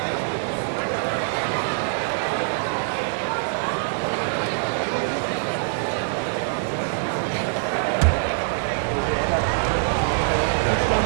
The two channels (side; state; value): left; silent; digital silence